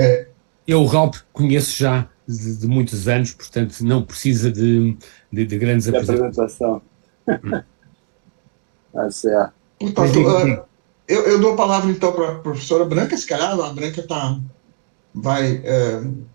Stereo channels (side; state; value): left; silent; 63 dB below the other